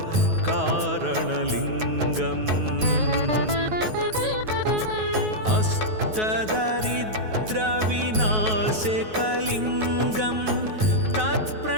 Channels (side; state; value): left; late; 9.3 ms